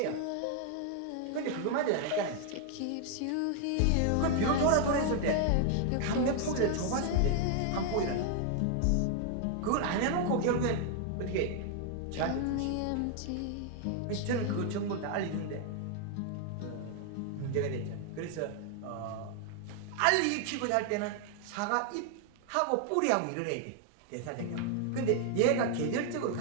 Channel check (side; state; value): both; different; correlation 0.00